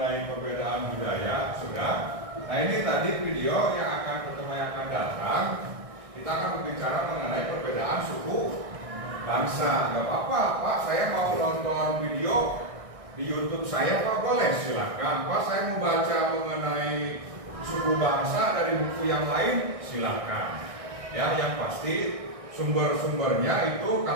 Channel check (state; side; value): late; left; 1.6 ms